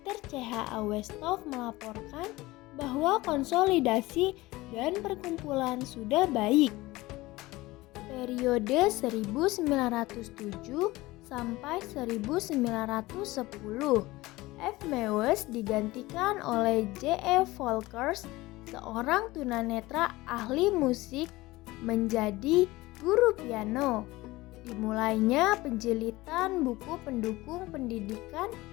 CH A. Westhoff melaporkan bahwa konsolidasi dan perkumpulan sudah baik. Periode 1907 sampai 1910, F. Mewes digantikan oleh J. E. Volkers, seorang tunanetra ahli musik, menjadi guru piano. Dimulainya penjilitan buku pendukung pendidikan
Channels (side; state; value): right; quieter; 19.6 dB